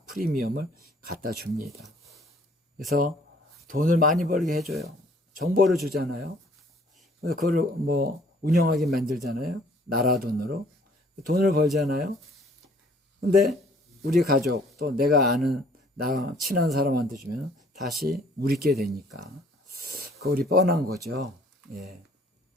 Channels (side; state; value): both; normal; correlation 0.58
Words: 프리미엄을 갖다 줍니다. 그래서 돈을 많이 벌게 해줘요. 정보를 주잖아요. 그래서 그걸 뭐 운영하게 만들잖아요. 나라 돈으로 돈을 벌잖아요. 근데 우리 가족 또 내가 아는 나 친한 사람한테 주면 다시 우리께 되니까 그 우리 뻔한 거죠.